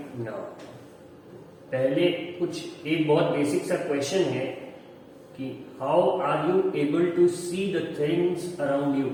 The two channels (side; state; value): both; identical; correlation 1.00